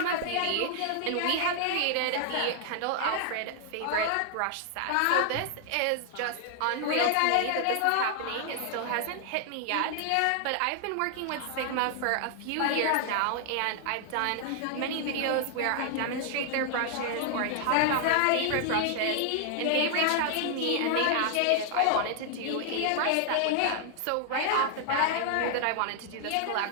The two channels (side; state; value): both; different; correlation 0.00